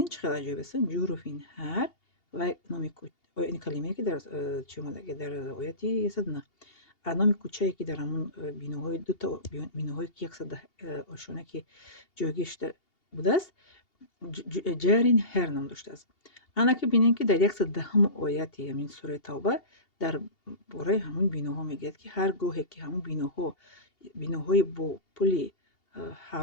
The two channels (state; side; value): late; right; 2.8 ms